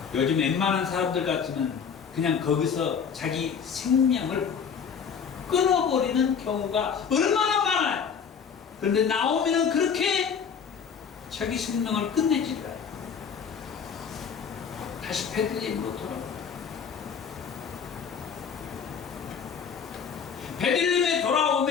요즘 웬만한 사람들 같으면 그냥 거기서 자기 생명을 끊어버리는 경우가 얼마나 많아요. 그런데 나오미는 그렇게 자기 생명을 끝내지 않아요. 다시 베들레헴으로 돌아옵니다. 베들레헴에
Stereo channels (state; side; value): quieter; right; 6.8 dB